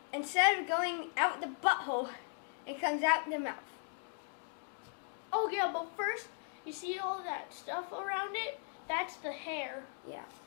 instead of going out the butthole, it comes out the mouth. Oh yeah, but first, you see all that stuff around it? That's the hair. Yeah,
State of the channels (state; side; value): silent; right; 53 dB below the other